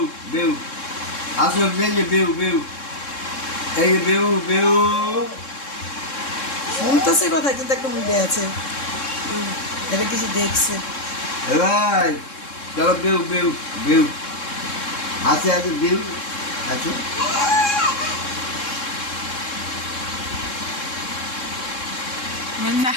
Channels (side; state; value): right; late; 3.7 ms